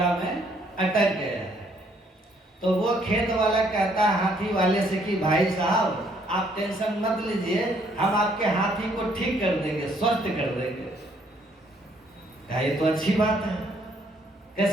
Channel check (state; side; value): normal; both; correlation 0.67